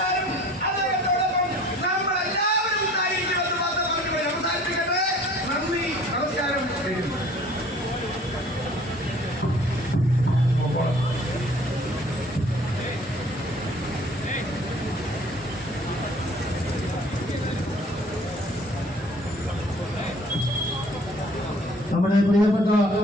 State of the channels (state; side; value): normal; both; correlation 0.52